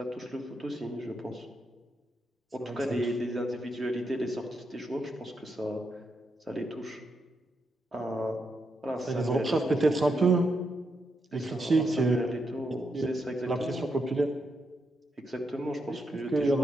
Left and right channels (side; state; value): both; normal; correlation 0.82